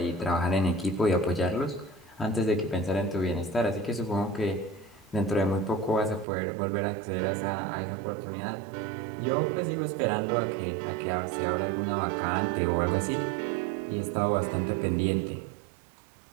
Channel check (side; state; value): left; drops out; at 6.2 s